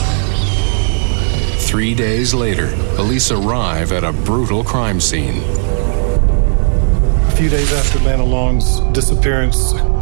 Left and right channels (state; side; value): silent; left; digital silence